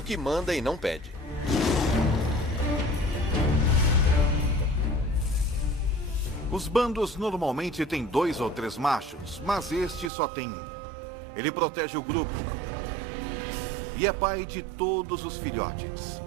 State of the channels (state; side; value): drops out; left; at 10.1 s